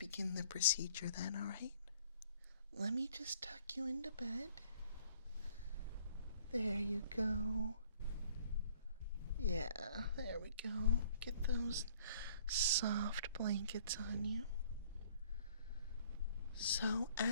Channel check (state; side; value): inverted; both; correlation -0.57